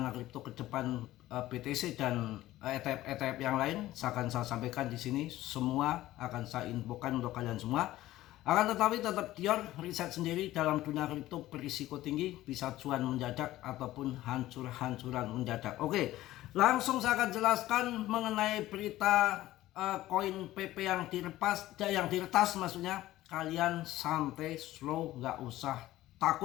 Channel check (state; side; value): quieter; right; 15.6 dB